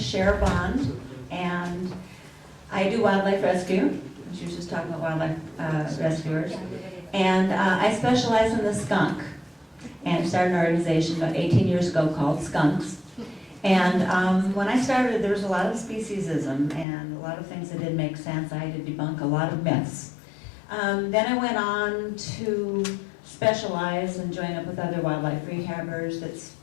Bond, and I do wildlife rescue. She was just talking about wildlife rescuers. And I specialize in the skunk, and started an organization about 18 years ago called Skunks. And when I started, there was a lot of speciesism and a lot of things that didn't make sense. I had to debunk a lot of myths. Then I went on to specialize and join up with other wildlife rehabbers.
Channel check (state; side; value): drops out; right; at 16.9 s